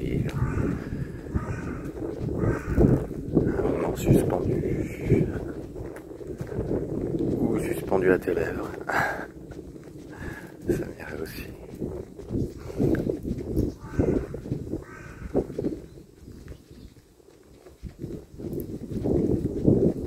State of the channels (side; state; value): both; identical; correlation 1.00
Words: un moment suspendu ou suspendu à tes lèvres. Ça m'irait aussi.